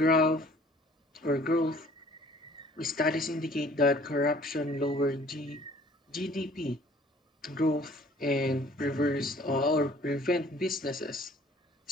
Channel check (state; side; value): normal; both; correlation 0.54